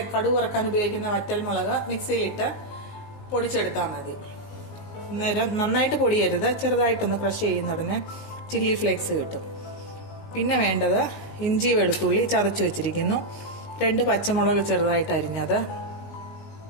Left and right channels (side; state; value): right; late; 19 ms